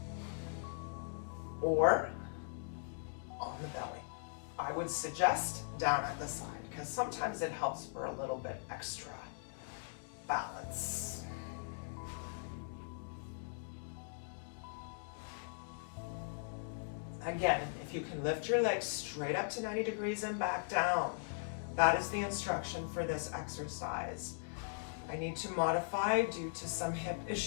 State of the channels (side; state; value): right; silent; digital silence